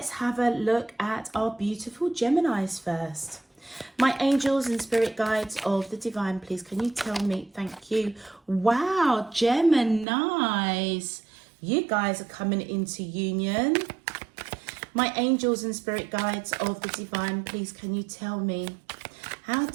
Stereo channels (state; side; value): drops out; left; at 10.1 s